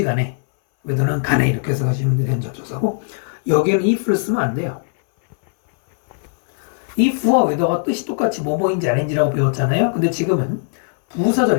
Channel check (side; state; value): right; silent; 62 dB below the other